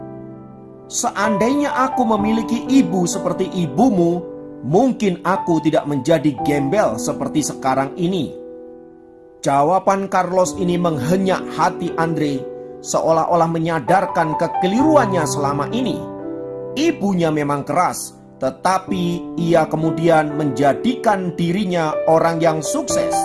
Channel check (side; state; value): both; identical; correlation 1.00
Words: Seandainya aku memiliki ibu seperti ibumu, mungkin aku tidak menjadi gembel seperti sekarang ini." Jawaban Carlos ini menghenyak hati Andre, seolah-olah menyadarkan kekeliruannya selama ini. Ibunya memang keras, tetapi ia kemudian menjadikan dirinya orang yang sukses.